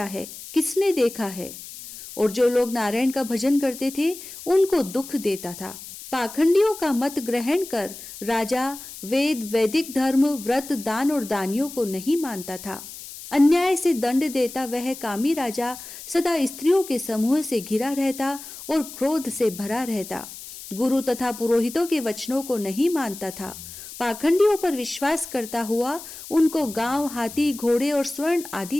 है? किसने देखा है? और जो लोग नारायण का भजन करते थे उनको दुख देता था। पाखंडियों का मत ग्रहण कर राजा वेद, वैदिक धर्म, व्रत, दान और दानियों को नहीं मानता था। अन्याय से दंड देता वह कामी राजा सदा स्त्रियों के समूह से घिरा रहता और क्रोध से भरा रहता। गुरु तथा पुरोहितों के वचनों को नहीं मानता था। पाखंडियों पर विश्वास करता हुआ उनको गांव, हाथी, घोड़े और स्वर्ण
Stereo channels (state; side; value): noise; left; hiss, 13 dB below the sound